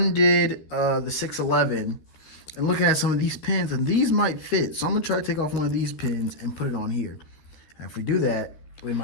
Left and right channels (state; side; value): late; right; 13 ms